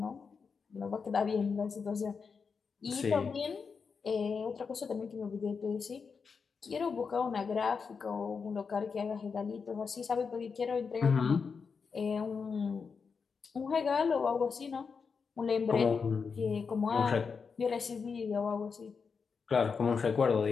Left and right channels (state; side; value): quieter; right; 5.5 dB